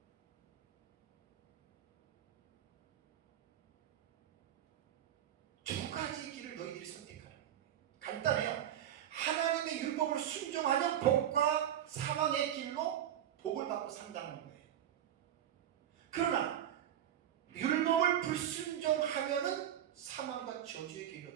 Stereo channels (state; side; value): quieter; left; 10.7 dB